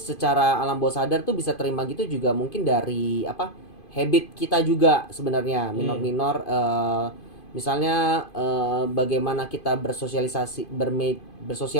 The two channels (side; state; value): right; late; 2.5 ms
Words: alam bawah sadar tuh bisa terima gitu juga mungkin dari habit kita juga sebenarnya minor-minor misalnya bagaimana kita bersosialisasi